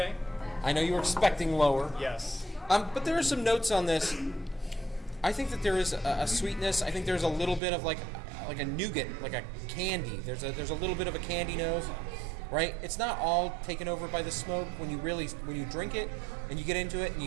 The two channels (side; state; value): left; drops out; at 7.6 s